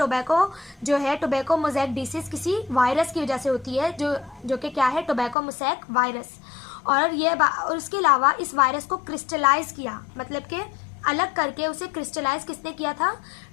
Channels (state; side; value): drops out; right; at 5.4 s